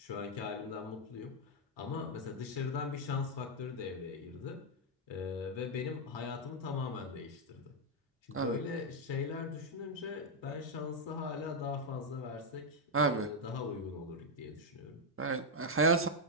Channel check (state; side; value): normal; both; correlation 0.00